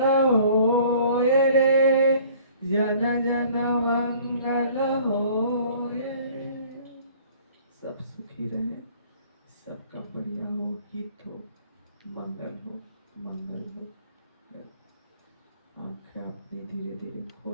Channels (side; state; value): both; inverted; correlation -0.53